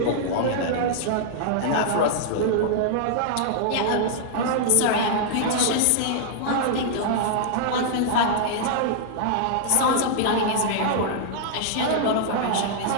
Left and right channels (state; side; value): different; both; correlation -0.01